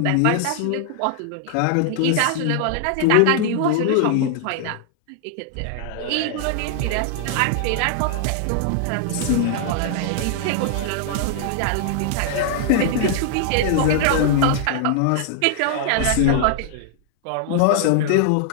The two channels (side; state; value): both; different; correlation -0.01